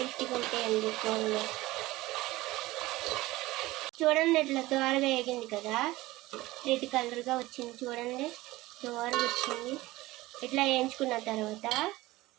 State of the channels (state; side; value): quieter; left; 18.7 dB